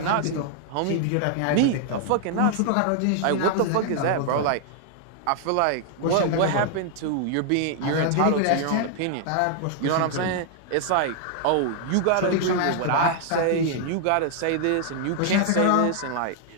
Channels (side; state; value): both; different; correlation 0.00